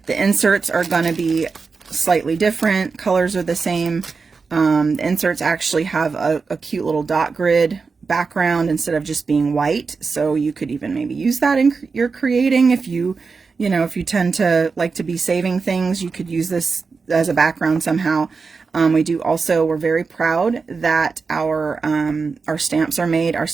The inserts are going to be slightly different. Colors are the same. The inserts actually have a cute little dot grid background instead of just being white. So you could even maybe use that in your creating. If you tend to like to be saving things, you could use this as a background somehow. We're very proud that our stamps are made, our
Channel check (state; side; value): quieter; left; 4.7 dB